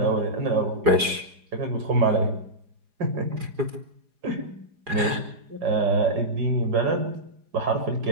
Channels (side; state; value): left; late; 4.9 ms